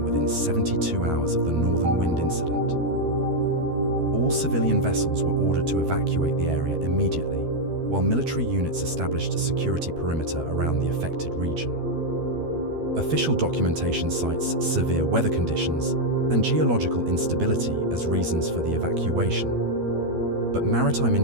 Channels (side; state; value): left; late; 12 ms